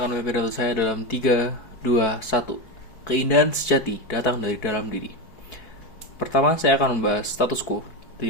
memiliki pidato saya dalam 3, 2, 1. Keindahan sejati datang dari dalam diri. Pertama, saya akan membahas status quo dari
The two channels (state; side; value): late; right; 4.5 ms